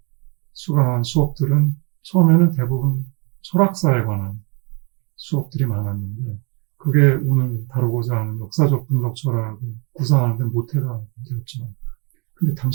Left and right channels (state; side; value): quieter; left; 33.2 dB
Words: 수강한 수업들은 처음에는 대부분 철학사에 관한 수업들이 많았는데 그게 오늘 다루고자 하는 역사적 분석 철학을 구상하는 데 모태가 되었죠. 근데